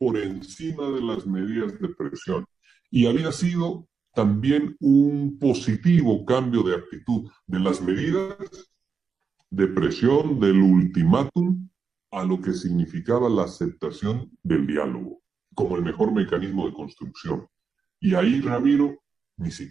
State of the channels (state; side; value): quieter; left; 5.6 dB